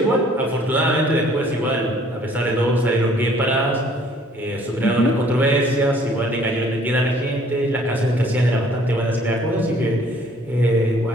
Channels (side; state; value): both; normal; correlation 0.58